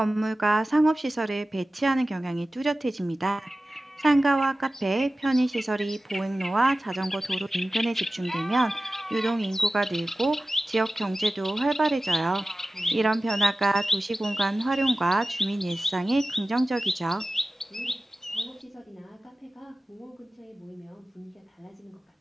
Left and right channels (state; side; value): normal; both; correlation 0.96